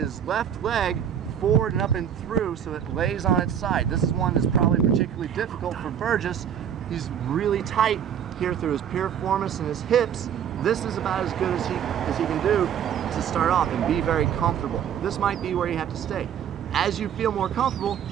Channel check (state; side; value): quieter; left; 9.0 dB